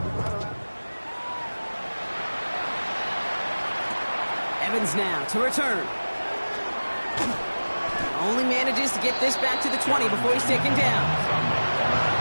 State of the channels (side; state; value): both; inverted; correlation -1.00